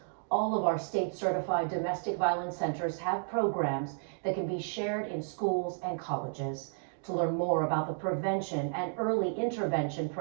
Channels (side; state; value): left; silent; digital silence